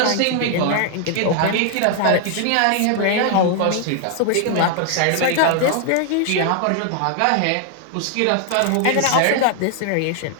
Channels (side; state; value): both; different; correlation 0.00